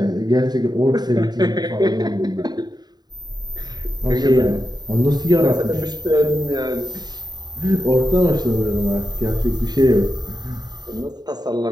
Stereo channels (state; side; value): late; left; 0.20 ms